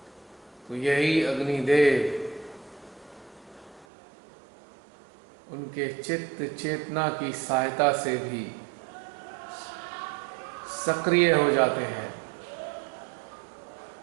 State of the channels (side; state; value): left; drops out; at 3.9 s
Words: तो यही अग्निदेव उनके चित्त चेतना की सहायता से भी सक्रिय हो जाते हैं